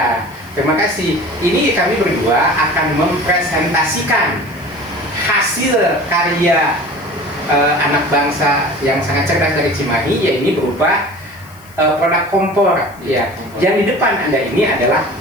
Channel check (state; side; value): noise; left; hiss, 25 dB below the sound